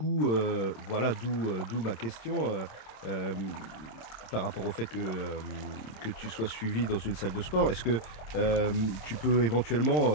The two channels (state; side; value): late; right; 26 ms